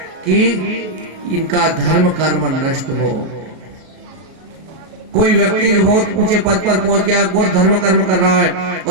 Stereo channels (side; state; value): left; late; 37 ms